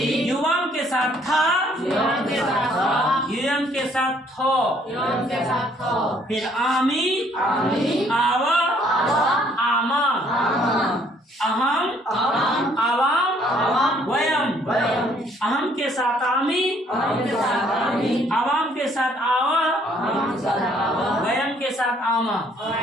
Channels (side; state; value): both; normal; correlation 0.63